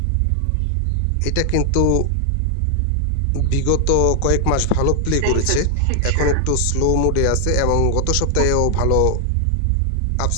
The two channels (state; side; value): different; both; correlation 0.00